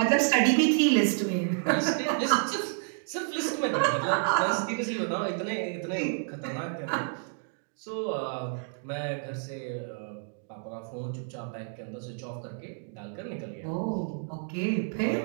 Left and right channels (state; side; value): silent; left; 58 dB below the other